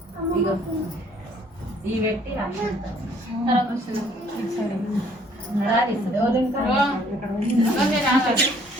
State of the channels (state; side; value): normal; both; correlation 0.61